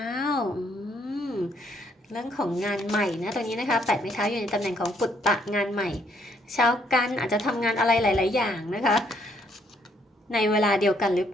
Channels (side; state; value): both; normal; correlation 0.69